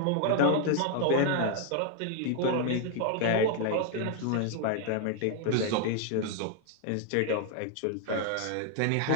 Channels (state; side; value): different; both; correlation 0.00